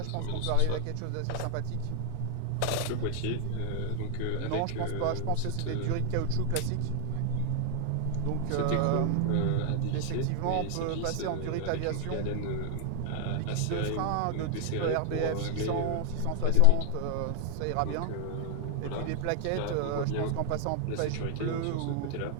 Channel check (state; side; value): different; both; correlation 0.00